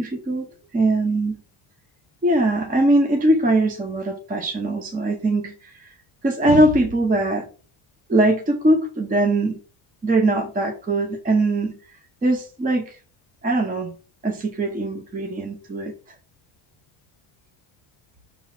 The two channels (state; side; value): normal; both; correlation 0.65